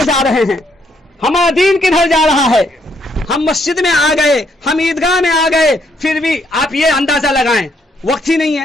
جا رہے ہیں, ہمارا دین کدھر جا رہا ہے. ہم مسجد میں آ گئے, ہم عیدگاہ میں آ گئے, پھر بھی آپ یہ اندازہ لگائیں وقت ہی نہیں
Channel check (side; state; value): both; normal; correlation 0.72